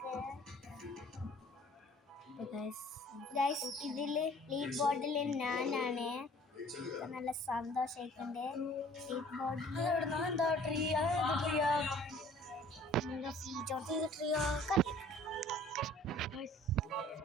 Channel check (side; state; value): both; normal; correlation 0.52